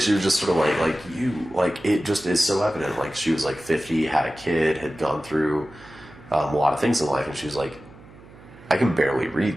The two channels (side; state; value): right; noise; hum, 21 dB below the sound